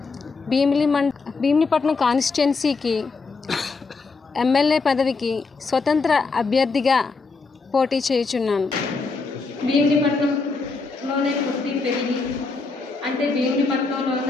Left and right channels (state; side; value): quieter; right; 4.2 dB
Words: భీమిలిపట్నం కాన్స్టిట్యున్సీకి ఎమ్మెల్యే పదవికి స్వతంత్ర అభ్యర్థిగా పోటీ చేయుచున్నాను. భీమిలిపట్నంలోనే పుట్టి పెరిగి అంటే